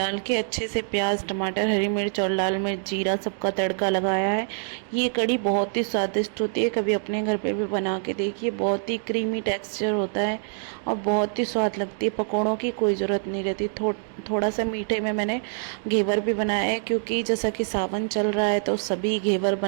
के अच्छे से प्याज, टमाटर, हरी मिर्च और लाल मिर्च, जीरा सबका तड़का लगाया है। ये कढ़ी बहुत ही स्वादिष्ट होती है, कभी अपने घर पे भी बना के देखिए। बहुत ही क्रीमी टेक्सचर होता है और बहुत ही स्वाद लगती है। पकौड़ों की कोई ज़रूरत नहीं रहती। थोड़ा सा मीठे में मैंने घेवर भी बनाया है, क्योंकि जैसा कि सावन चल रहा है तो सभी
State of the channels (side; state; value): left; silent; digital silence